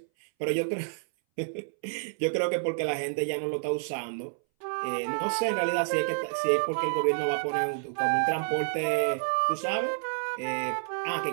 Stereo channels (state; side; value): silent; left; 59 dB below the other